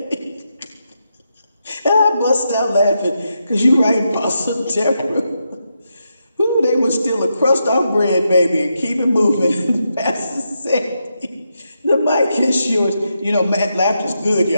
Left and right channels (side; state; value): both; inverted; correlation -0.84